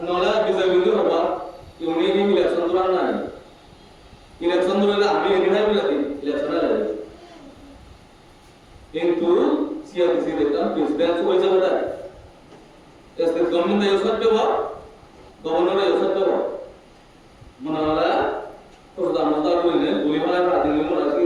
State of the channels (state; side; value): identical; both; correlation 1.00